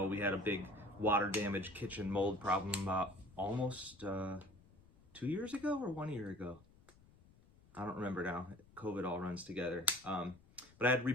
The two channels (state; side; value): noise; left; rumble, 27 dB below the sound